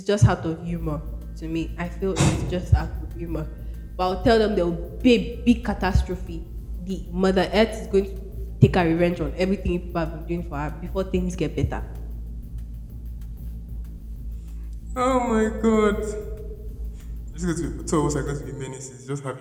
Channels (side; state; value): both; identical; correlation 1.00